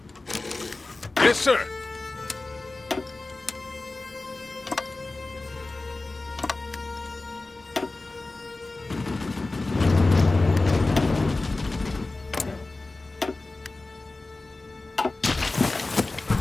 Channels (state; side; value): quieter; right; 3.2 dB